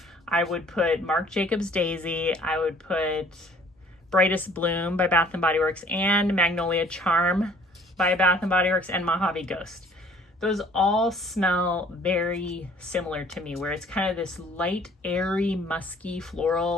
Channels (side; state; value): both; normal; correlation 0.55